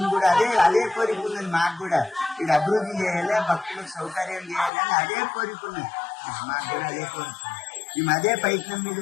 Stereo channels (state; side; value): drops out; right; at 4.7 s